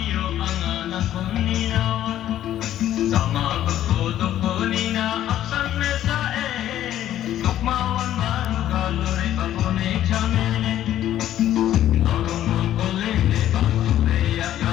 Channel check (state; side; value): quieter; right; 12.2 dB